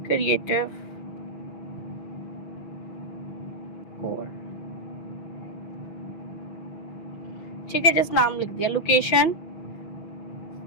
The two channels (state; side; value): late; right; 6.2 ms